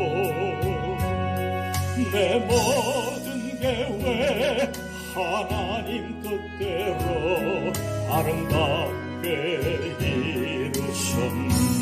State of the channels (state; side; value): identical; both; correlation 1.00